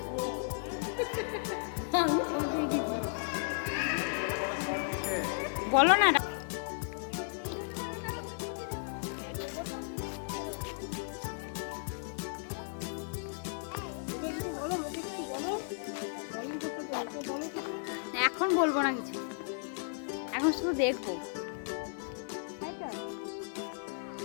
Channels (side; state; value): right; silent; digital silence